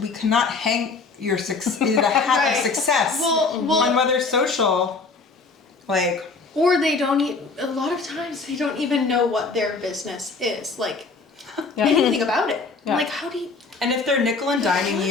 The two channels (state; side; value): quieter; right; 4.2 dB